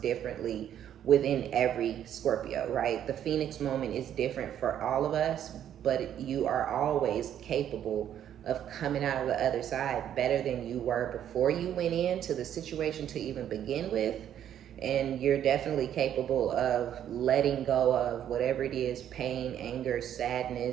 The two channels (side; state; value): left; quieter; 10.3 dB